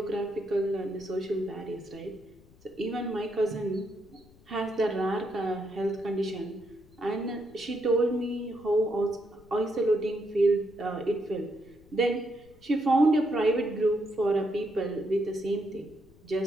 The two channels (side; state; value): left; noise; rumble, 26 dB below the sound